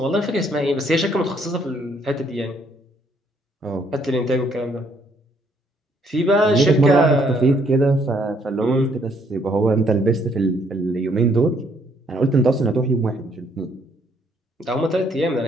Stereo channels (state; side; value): normal; both; correlation 0.68